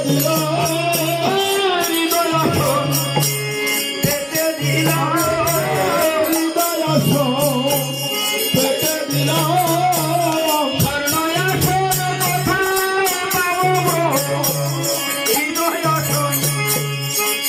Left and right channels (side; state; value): both; identical; correlation 1.00